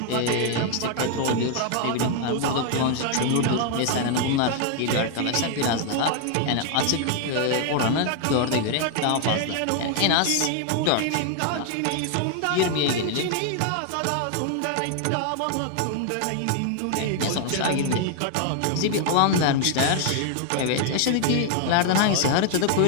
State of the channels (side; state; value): both; different; correlation 0.00